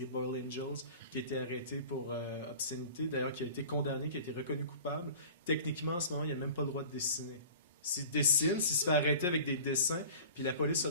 Boiled Angels, qui a été arrêté pour obscénité, d'ailleurs qui a été condamné, qui a été reconnu coupable. Techniquement, en ce moment, il n'a même pas le droit de dessiner. S'il dessine, s'il se fait arrêter avec des dessins, puis la police a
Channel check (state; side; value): inverted; both; correlation -0.41